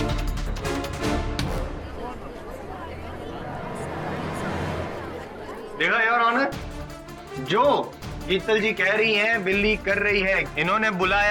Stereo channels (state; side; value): identical; both; correlation 1.00